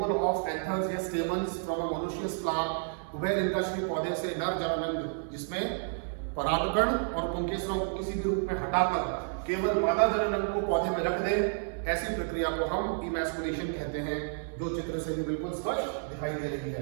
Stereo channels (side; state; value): left; silent; 57 dB below the other